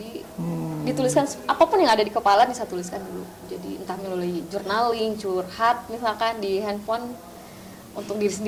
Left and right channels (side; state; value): both; identical; correlation 1.00